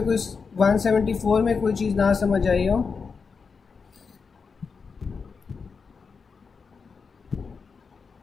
कोई 174 में कोई चीज़ ना समझ आई हो?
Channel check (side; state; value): right; quieter; 5.3 dB